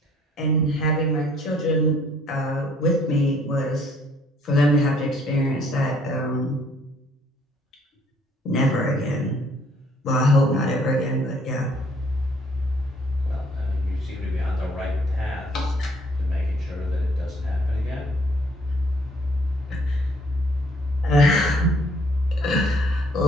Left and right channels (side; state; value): both; normal; correlation 0.62